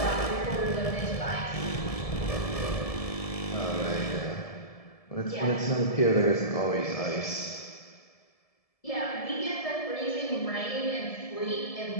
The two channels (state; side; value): late; right; 1.7 ms